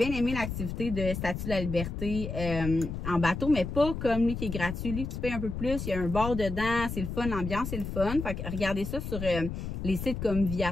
aimé l'activité de Statue de la Liberté en bateau, mais pas comme lui qui est gratuit. Lui, tu payes un peu plus, il y a un bar dedans, c'est le fun, l'ambiance, c'est le fun. Fait que regardez ça sur les sites comme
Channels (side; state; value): left; noise; rumble, 5 dB below the sound